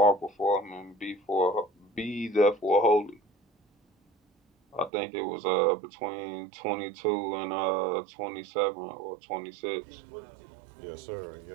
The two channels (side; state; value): left; drops out; at 4.9 s